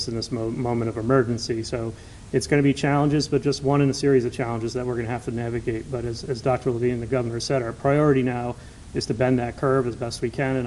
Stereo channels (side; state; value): both; identical; correlation 1.00